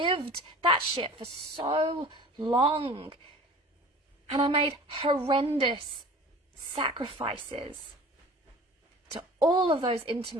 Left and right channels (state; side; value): normal; both; correlation 0.42